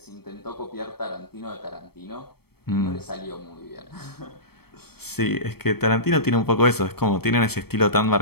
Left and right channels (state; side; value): late; right; 0.96 ms